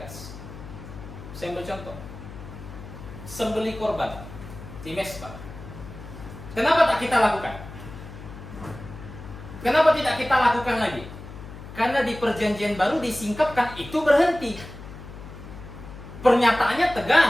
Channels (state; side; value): noise; left; hum, 14 dB below the sound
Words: Saya ambil contoh. Sembelih korban di Mezbah. Kenapa tak kita lakukan? Kenapa tidak kita lakukan lagi? Karena di perjanjian baru disingkapkan itu berhenti. Pernyataannya